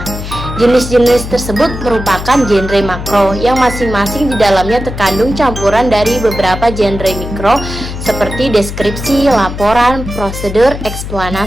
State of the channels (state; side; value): noise; left; hum, 8 dB below the sound